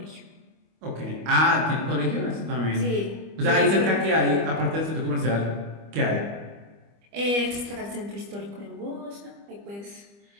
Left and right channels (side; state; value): left; late; 25 ms